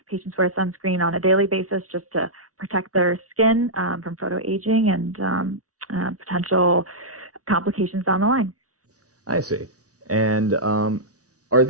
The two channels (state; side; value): late; left; 0.67 ms